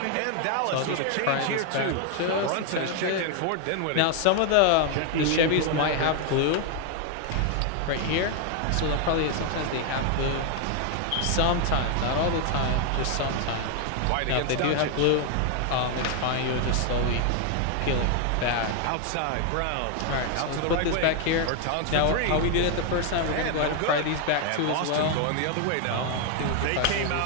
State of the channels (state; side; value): different; both; correlation 0.00